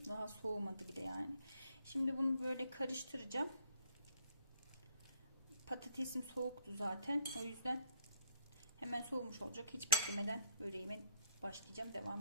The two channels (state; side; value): inverted; both; correlation -0.65